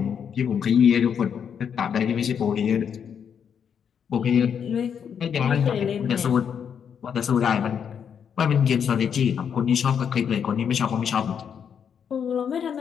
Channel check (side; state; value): right; quieter; 7.6 dB